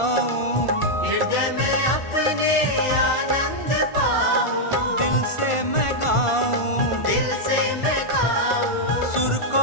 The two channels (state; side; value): late; right; 1.5 ms